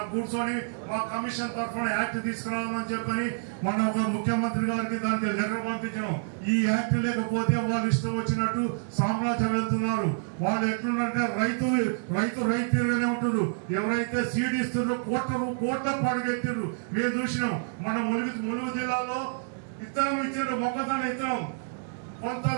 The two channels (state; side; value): silent; left; digital silence